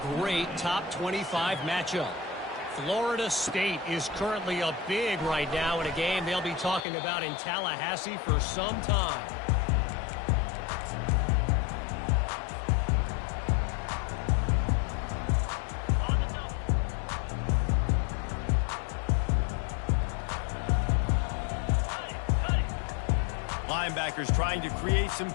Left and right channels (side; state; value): right; drops out; at 6.9 s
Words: great top 25 matchup. Florida State is currently up big right now in a game they'll be talking about in Tallahassee for some time. Linebackers trying to create some